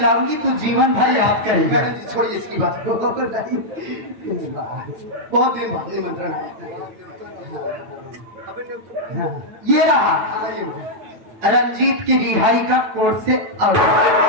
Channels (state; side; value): late; left; 9.0 ms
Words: तू जीवन भर याद करेगा। छोड़िए इसकी बात। बहुत दिन बाद निमंत्रण आया। ये रहा रंजीत की रिहाई का कोर्ट से आउट।